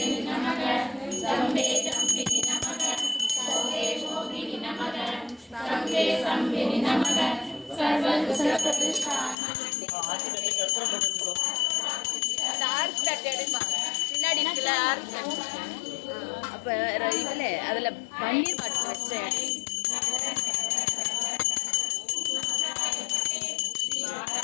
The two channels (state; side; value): drops out; right; at 9.3 s